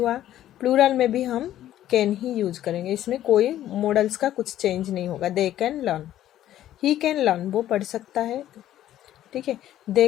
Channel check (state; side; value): quieter; right; 12.6 dB